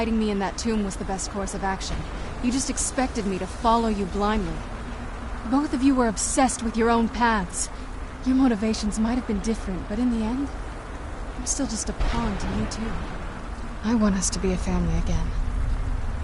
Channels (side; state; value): both; identical; correlation 1.00